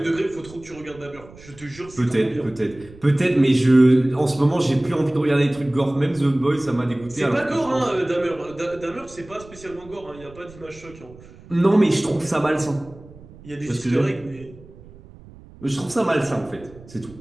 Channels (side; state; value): right; noise; rumble, 21 dB below the sound